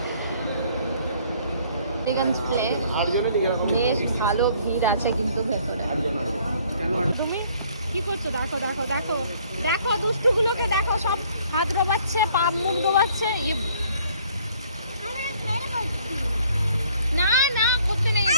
বালিগঞ্জ প্লেস। বেশ ভালো ভিড় আছে কিন্তু ভেতরে। তুমি কি করছো? দেখো দেখো দেখো দেখো দুষ্টুগুলোকে দেখো, সব হাত ডোবাচ্ছে, পা মুখ ডোবাচ্ছে। না না করতে নেই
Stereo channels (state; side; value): inverted; both; correlation -0.60